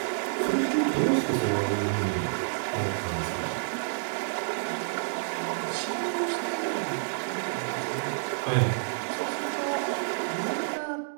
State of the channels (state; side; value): silent; left; digital silence